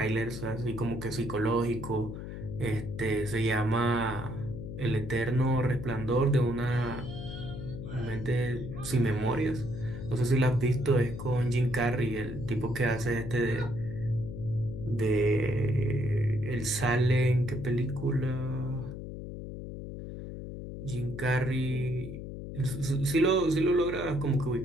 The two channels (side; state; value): left; noise; hum, 8 dB below the sound